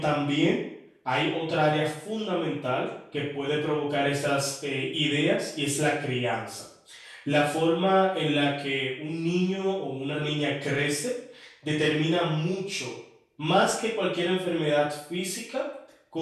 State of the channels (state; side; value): identical; both; correlation 1.00